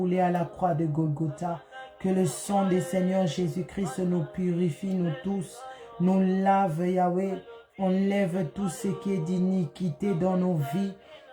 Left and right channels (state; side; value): identical; both; correlation 1.00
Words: à la croix de Golgotha, que le sang des Seigneur Jésus-Christ nous purifie, nous tous, nous lave, Yahweh, enlève tout ce qui est d'iniquité dans nos vies,